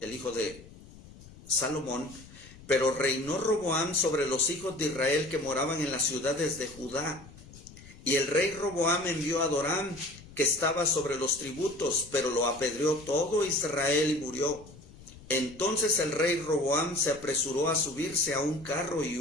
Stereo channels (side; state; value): left; noise; rumble, 20 dB below the sound